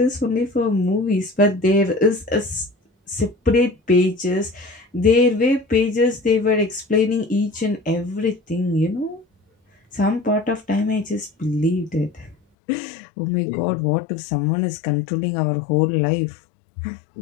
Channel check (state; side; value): drops out; right; at 12.4 s